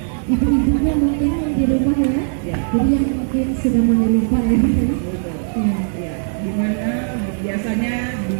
ibu-ibunya mungkin yang di rumah ya. Jadi yang mungkin sudah mulai lupa ya. Ya, dimana biasanya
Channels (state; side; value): silent; left; digital silence